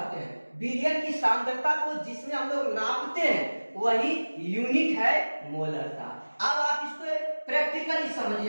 हैं। विलयन की सांद्रता को जिसमें हम लोग नापते हैं वही यूनिट है मोलरता। अब आप इसको प्रैक्टिकली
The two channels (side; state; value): both; inverted; correlation -1.00